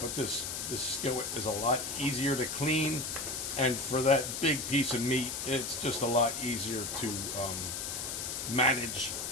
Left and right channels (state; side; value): noise; left; hiss, 4 dB below the sound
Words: this skillet is a lot easier to clean. And for that big piece of meat, it's just a lot easier to manage